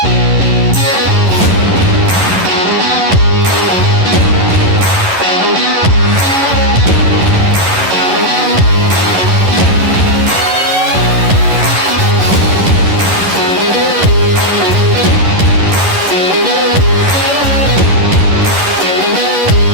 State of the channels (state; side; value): late; left; 11 ms